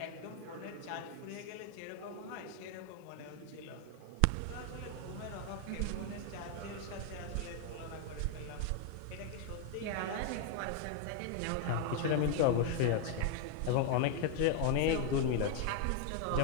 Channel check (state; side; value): different; both; correlation 0.01